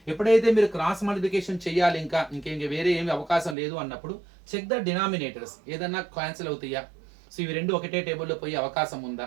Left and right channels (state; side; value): drops out; left; at 3.6 s